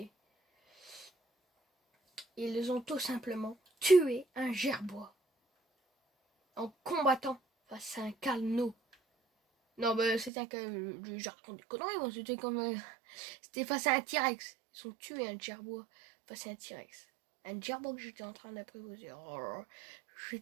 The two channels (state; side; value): drops out; left; at 10.3 s